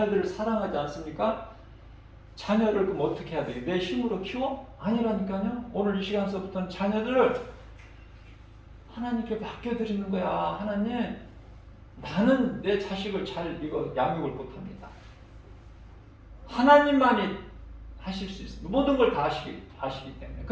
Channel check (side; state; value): both; identical; correlation 1.00